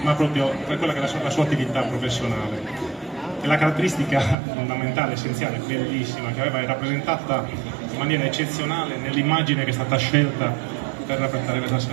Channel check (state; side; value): drops out; left; at 4.4 s